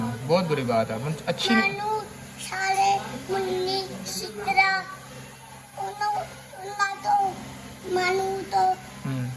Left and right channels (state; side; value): identical; both; correlation 1.00